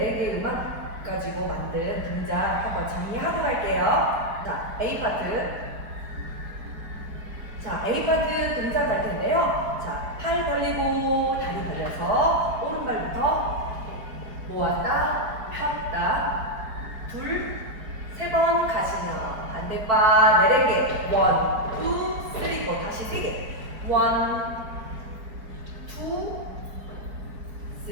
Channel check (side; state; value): left; late; 4.6 ms